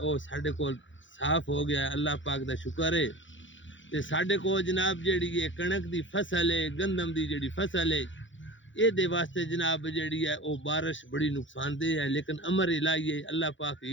ساڈے کو صاف ہو گیا ہے اللہ پاک دا شکر ہے تے ساڈے کو جناب جیڑی ہے کنک دی فصل ہے گندم دی جیڑی فصل ہے یہ دے واسطے جناب جیڑی ہے وہ بارش بڑی نقصان دہ ہے لیکن امر الہی ہے اللہ پاک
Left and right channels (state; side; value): late; right; 0.55 ms